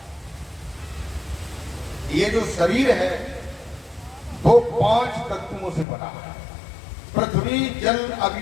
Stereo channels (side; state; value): right; drops out; at 5.9 s